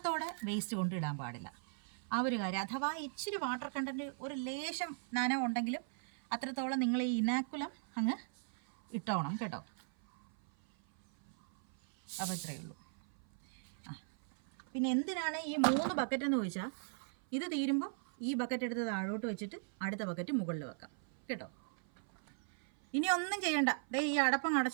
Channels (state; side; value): silent; left; 52 dB below the other